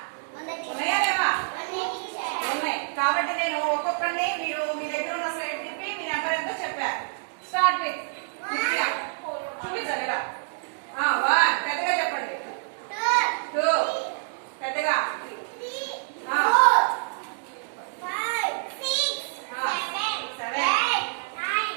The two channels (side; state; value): left; silent; digital silence